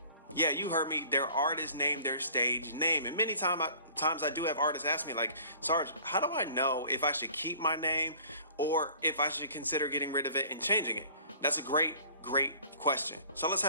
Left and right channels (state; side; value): inverted; both; correlation -0.49